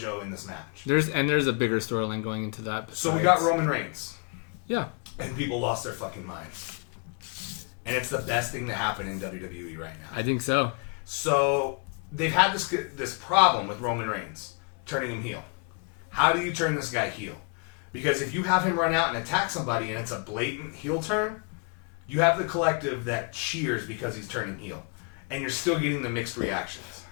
in this match. There's a bigger storyline going into that. So we got Roman Reigns. Yeah. And people lost their fucking minds. And it's the best thing to happen in WWE right now. I think so. So they've had this problem with Roman Reigns turning him heel. How do you turn this guy heel? Because if you have him run out and attack somebody and it's a blatant heel turn, you have the collective that cheers because he's turning heel. And you're still getting the mixed reactions.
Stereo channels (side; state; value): right; quieter; 36.4 dB